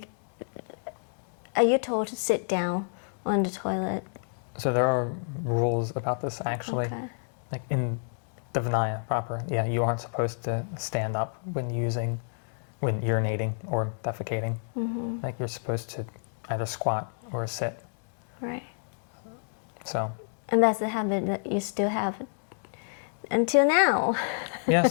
are you told to sit down on the toilet? So there are rules about this, actually. Okay. Like in the Vinaya proper, yeah, you aren't supposed to stand up when urinating or defecating. Like you're supposed to either squat or sit. Right. So. And that's the habit that you still have until now.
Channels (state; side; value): silent; right; digital silence